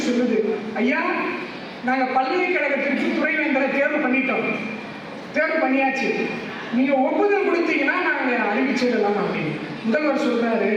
சொல்லுது, ஐயா நாங்கள் பல்கலைக்கழகத்திற்கு துணைவேந்தரை தேர்வு பண்ணிட்டோம், தேர்வு பண்ணியாச்சு, நீங்க ஒப்புதல் கொடுத்தீங்கன்னா நாங்கள் அறிவிச்சிடலாம் அப்படின்னு. முதல்வர் சொல்றாரு,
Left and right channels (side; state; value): both; identical; correlation 1.00